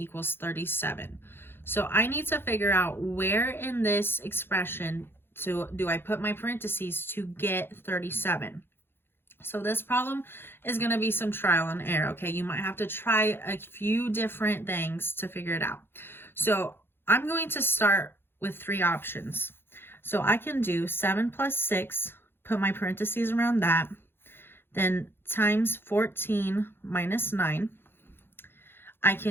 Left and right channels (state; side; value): late; right; 0.11 ms